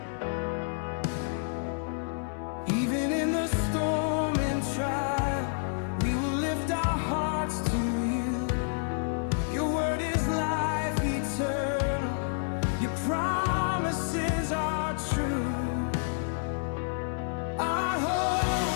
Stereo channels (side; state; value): right; silent; 58 dB below the other